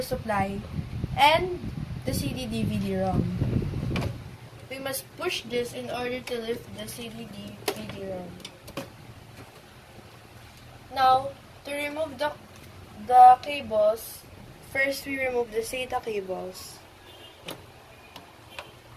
supply and the CD-DVD-ROM. We must push this in order to lift the CD-DVD-ROM. Now, to remove the cables, first we remove the SATA cables,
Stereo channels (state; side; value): identical; both; correlation 1.00